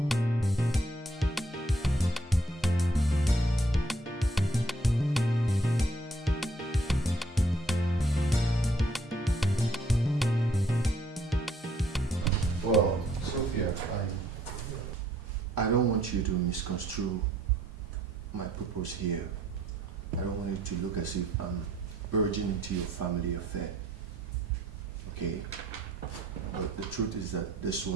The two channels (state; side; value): normal; both; correlation 0.65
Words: Well, Sophia, I don't want you to misconstrue my purpose here. I don't want it to look as if I'm urging into your family affair. Okay? But the truth is that this